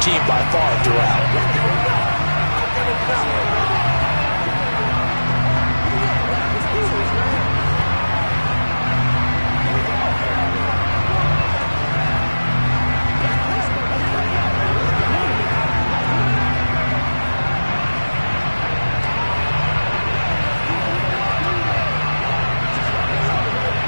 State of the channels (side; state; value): both; inverted; correlation -1.00